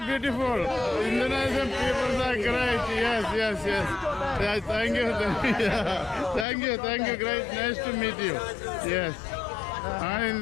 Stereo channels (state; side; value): drops out; right; at 6.5 s